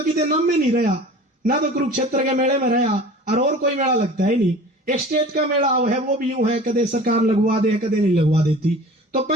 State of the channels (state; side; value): normal; both; correlation 0.41